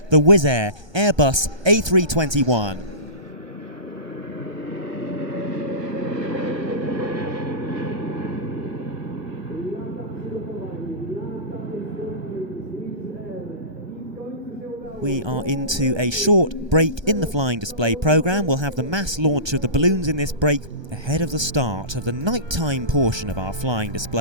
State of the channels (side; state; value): left; late; 1.3 ms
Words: the Wizz Air Airbus A321. We are into a short break in the flying display programme. We'll have the mass launch of the balloons in this break ahead of the start of the nighttime portion of our flying